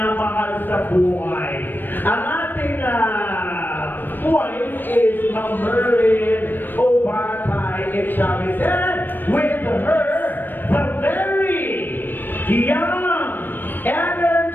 sa buhay. Ang ating wife is Ma'am Merlin Obatay Chavez. And with her, the very young,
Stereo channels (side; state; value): right; late; 0.093 ms